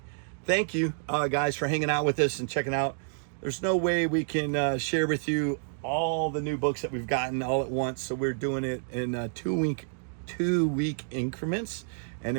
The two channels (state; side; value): silent; left; digital silence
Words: Thank you, guys, for hanging out with us and checking out. There's no way we can share with you all the new books that we've gotten all at once, so we're doing it in two-week increments, and